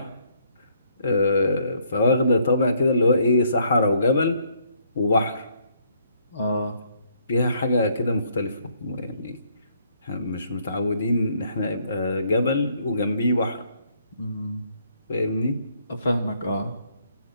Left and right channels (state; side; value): inverted; both; correlation -0.68